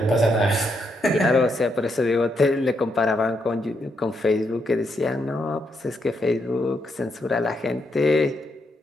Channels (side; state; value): both; normal; correlation 0.79